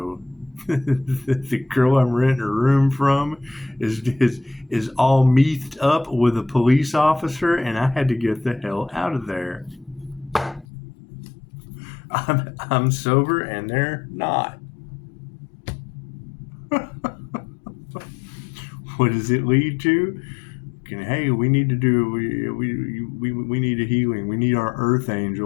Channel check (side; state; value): right; drops out; at 10.7 s